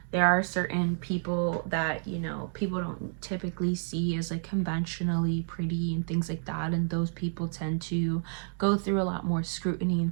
there are certain people that, you know, people don't typically see as like conventionally pretty and things like that, and those people tend to go through a lot more scrutiny and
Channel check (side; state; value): left; silent; 58 dB below the other